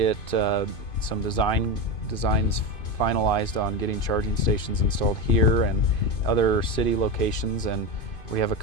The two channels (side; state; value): right; late; 2.5 ms